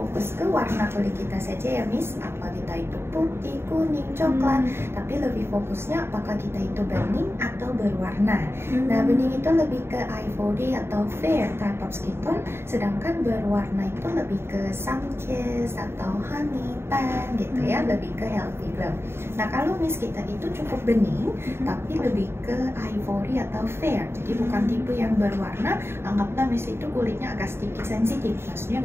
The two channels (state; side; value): late; left; 0.12 ms